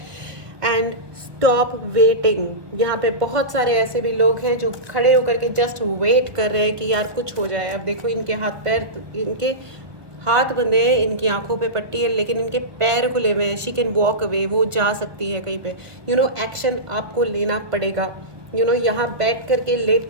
And stop waiting. यहाँ पे बहुत सारे ऐसे भी लोग हैं जो खड़े होकर के जस्ट वेट कर रहे हैं कि यार कुछ हो जाए। अब देखो इनके हाथ पैर, इनके हाथ बंधे हैं, इनकी आंखों पे पट्टी है, लेकिन इनके पैर खुले हुए हैं। शी कैन वॉक अवे, वो जा सकती है कहीं पे। यू नो एक्शन आपको लेना पड़ेगा। यू नो यहाँ बैठ करके, लेट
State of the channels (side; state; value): left; late; 1.4 ms